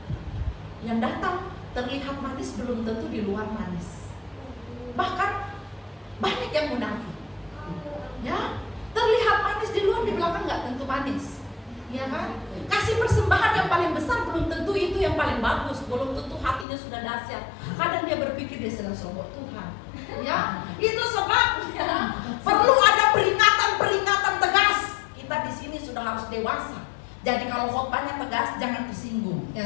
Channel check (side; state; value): right; drops out; at 16.7 s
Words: belum tentu di luar manis. Bahkan banyak yang munafik. Ya, terlihat manis di luar, di belakang nggak tentu manis. Ya kan? Kasih persembahan yang paling besar belum tentu itu yang paling bagus, belum tentu hatinya sudah dahsyat. Kadang dia berpikir dia sedang sombong Tuhan. Ya, itu sebabnya perlu ada peringatan-peringatan tegas. Kita di sini sudah harus dewasa. Jadi kalau khotbahnya tegas, jangan tersinggung.